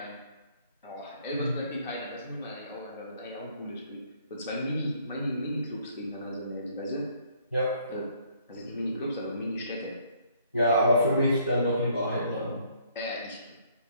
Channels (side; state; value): both; inverted; correlation -0.64